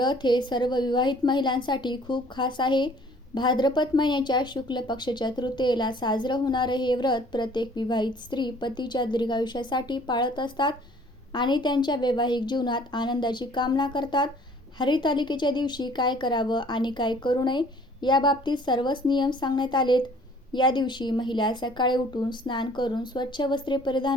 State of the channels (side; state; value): both; normal; correlation 0.55